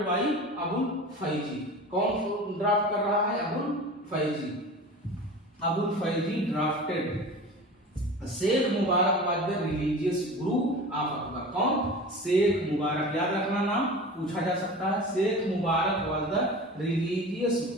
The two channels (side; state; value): both; normal; correlation 0.35